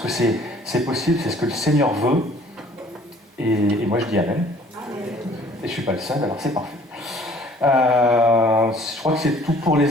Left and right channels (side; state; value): both; normal; correlation 0.54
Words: c'est possible, c'est ce que le Seigneur veut. Et moi je dis Amen. Et je suis pas le seul, alors c'est parfait. Je crois que c'est tout pour